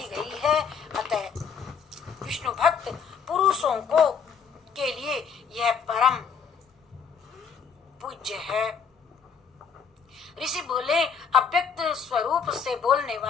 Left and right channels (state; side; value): quieter; right; 6.4 dB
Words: गई है। अतः विष्णु भक्त पुरुषों को के लिए यह परम पूज्य है। ऋषि बोले, अव्यक्त स्वरूप से बोलने